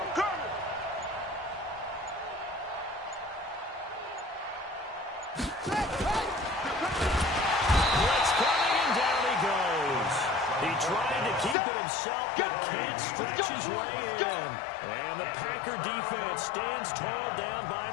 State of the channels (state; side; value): drops out; right; at 11.6 s